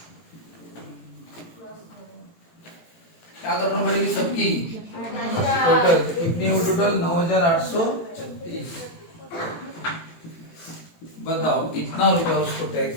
क्या करना पड़ेगी सबकी? टोटल कितनी हो? टोटल 9,836। बताओ कितना रुपया उसको टैक्स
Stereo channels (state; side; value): late; right; 18 ms